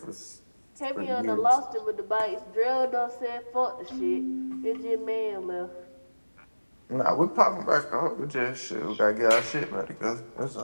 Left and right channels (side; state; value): both; inverted; correlation -1.00